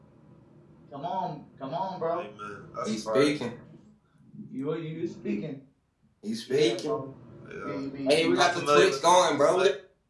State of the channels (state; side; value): identical; both; correlation 1.00